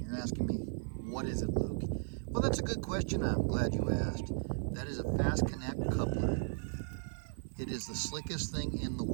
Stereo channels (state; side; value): silent; left; 54 dB below the other